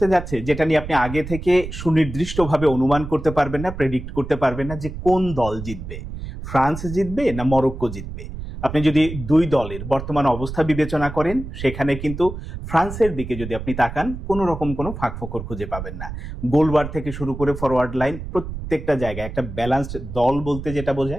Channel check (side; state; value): right; noise; rumble, 9 dB below the sound